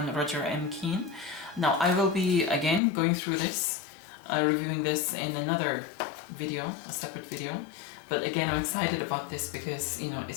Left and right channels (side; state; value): right; drops out; at 2.8 s